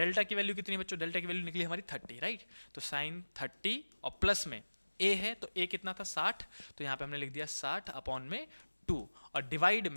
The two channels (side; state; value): both; inverted; correlation -1.00